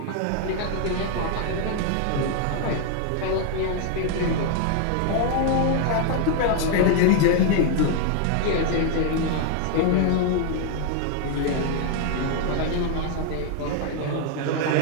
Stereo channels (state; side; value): different; both; correlation 0.00